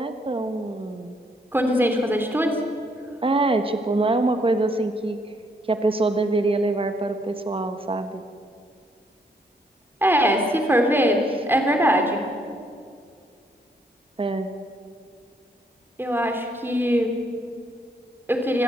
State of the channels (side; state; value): both; normal; correlation 0.70